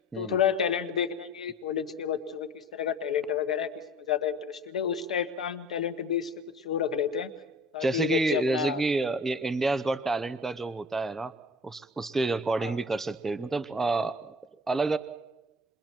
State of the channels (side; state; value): both; normal; correlation 0.45